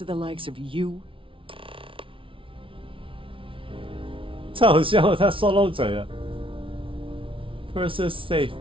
the likes of you. 太好笑了，他说漏嘴了。Purser's safe.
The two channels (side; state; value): left; late; 0.25 ms